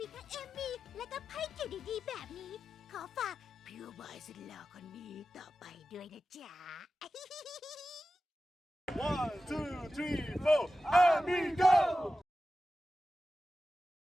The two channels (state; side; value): normal; both; correlation 0.94